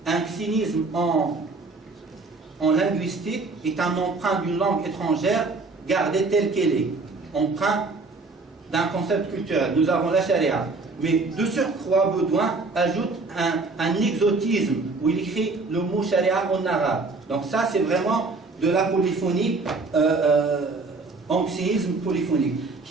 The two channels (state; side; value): quieter; left; 3.7 dB